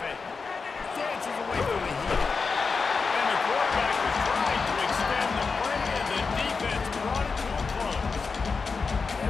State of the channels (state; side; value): quieter; right; 4.8 dB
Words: Dances away from the heat. And the quarterback was trying to extend the play, and the defense brought it to a close.